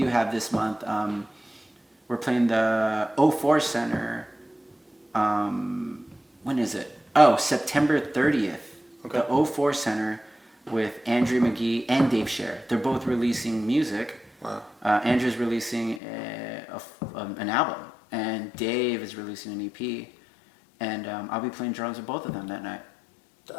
have this month. We're playing the 04 Center, when is it? Oh, September 30th, okay. The 04 Center, with Andrea McGee and Dave Scher. They're both releasing music. Wow. Andrew's releasing an album, and Dave is releasing an EP, and I'll be playing drums with both of them that night.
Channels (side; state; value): right; drops out; at 16.0 s